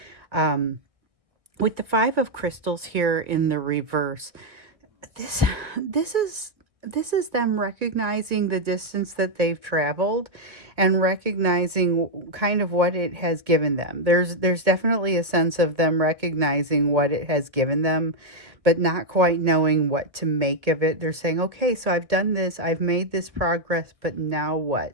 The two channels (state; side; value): late; left; 1.3 ms